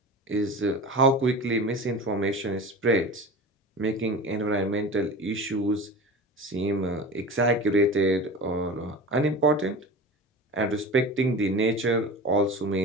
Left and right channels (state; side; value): normal; both; correlation 0.33